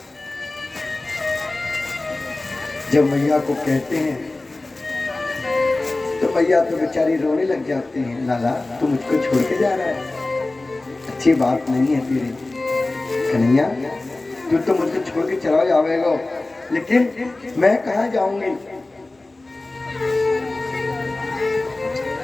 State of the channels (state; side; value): quieter; right; 3.0 dB